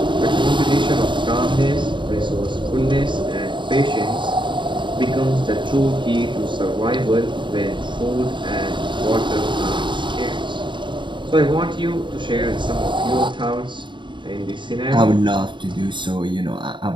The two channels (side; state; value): left; late; 0.23 ms